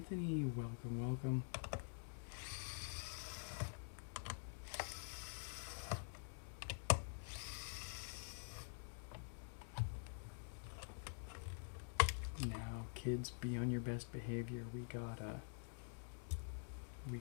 welcome, welcome. Now, kids, be on your best behavior. We got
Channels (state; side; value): silent; right; digital silence